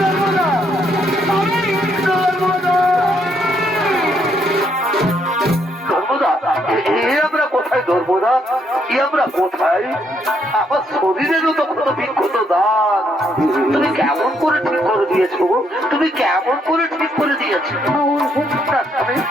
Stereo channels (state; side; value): normal; both; correlation 0.73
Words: নর্মদা, আমরা কোথায়? আমার শরীরেরও তো কোনো বিক্ষত দান তুমি কেমন করে ঠিক করে দিয়েছো? তুমি কেমন করে ঠিক করে দিয়েছো?